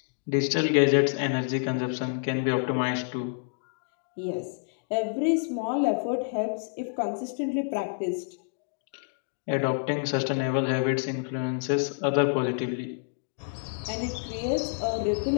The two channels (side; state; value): right; silent; digital silence